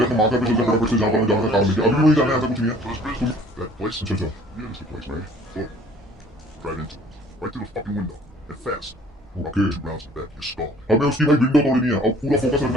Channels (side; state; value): both; normal; correlation 0.54